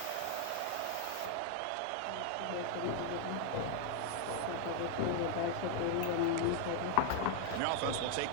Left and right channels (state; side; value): different; both; correlation 0.00